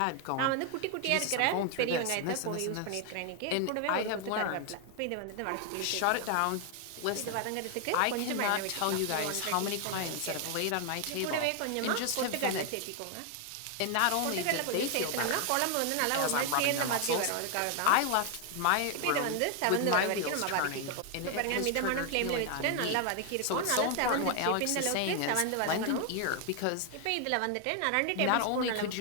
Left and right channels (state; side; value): different; both; correlation 0.00